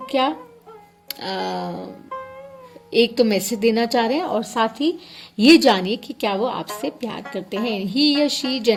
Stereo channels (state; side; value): identical; both; correlation 1.00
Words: क्या एक तो मैसेज देना चाह रहे हैं और साथ ही ये जानिए कि क्या वो आपसे प्यार करते हैं. ही या शी